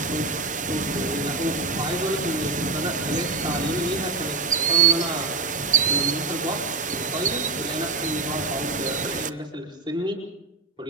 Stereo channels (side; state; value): left; quieter; 3.9 dB